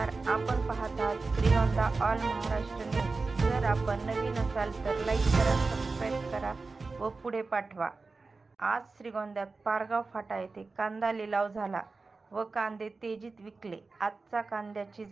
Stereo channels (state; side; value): quieter; left; 3.9 dB